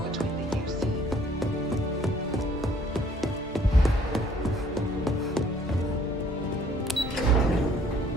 between the UC.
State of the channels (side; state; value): both; normal; correlation 0.59